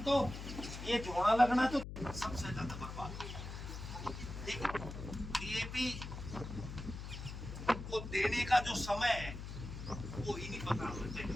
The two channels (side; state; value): left; noise; hum, 8 dB below the sound